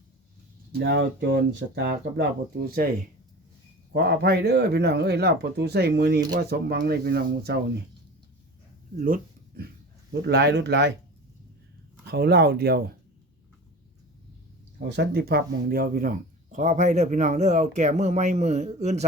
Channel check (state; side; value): normal; both; correlation 0.35